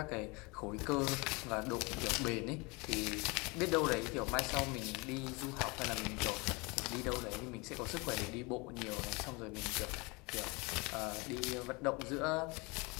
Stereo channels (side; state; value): right; quieter; 27.1 dB